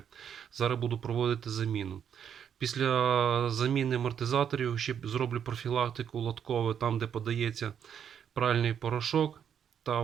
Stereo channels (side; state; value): left; quieter; 8.3 dB